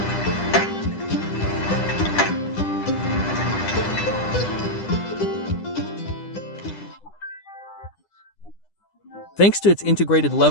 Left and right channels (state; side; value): late; right; 9.9 ms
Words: Thanks to its integrated